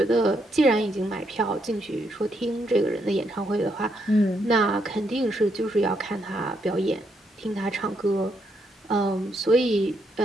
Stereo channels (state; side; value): normal; both; correlation 0.77